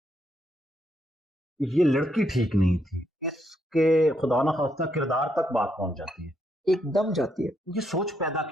ये लड़की ठीक नहीं थी, इसके खुदा ना खास्ता किरदार तक बात पहुंच जाती है। एकदम जाती है। ये सोच पैदा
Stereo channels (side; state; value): both; normal; correlation 0.77